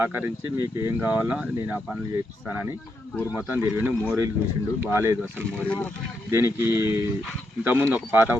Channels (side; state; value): both; normal; correlation 0.81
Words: మీకు ఏం కావాలో నేను ఆ పనులు చేపిస్తానని ఊరు మొత్తం తిరిగిండు. మోరీలు చూసిండు, బాగాలేదు అసలు మోరీలు. దీనికి ఇంతకుముందు ఒక పాత